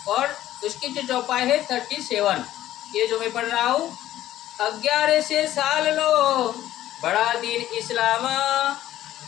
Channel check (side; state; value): right; quieter; 13.5 dB